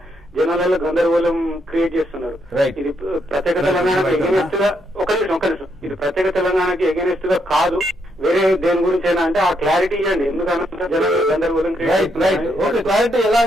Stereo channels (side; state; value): both; normal; correlation 0.77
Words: జనాలలో గందరగోళం క్రియేట్ చేస్తున్నారు. ఇది ప్రత్యేక తెలంగాణకి ఎగెనిస్ట్ గా ఒక నిమిషం ఇది ప్రత్యేక తెలంగాణకి ఎగెనిస్ట్ గా కాదు, వేరే దేని గురించి అయినా అంటే ఆ క్లారిటీ ఇవ్వండి. ఎందుకంటే జనాలు గందరగోళం క్రియేట్